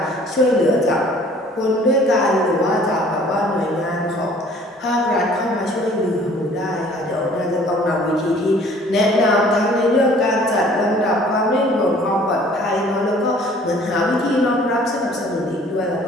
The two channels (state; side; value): normal; both; correlation 0.54